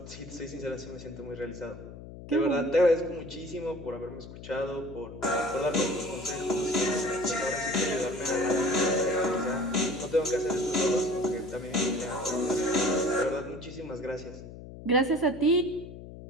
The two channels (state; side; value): noise; left; hum, 14 dB below the sound